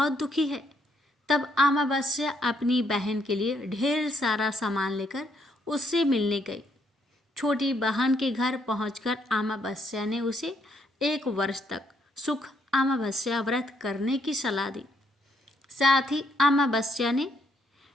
दुखी है, तब अमावस्या अपनी बहन के लिए ढेर सारा सामान लेकर उससे मिलने गई। छोटी बहन के घर पहुंचकर अमावस्या ने उसे 1 वर्ष तक सुख अमावस्या व्रत करने की सलाह दी। साथ ही अमावस्या ने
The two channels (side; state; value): both; normal; correlation 0.72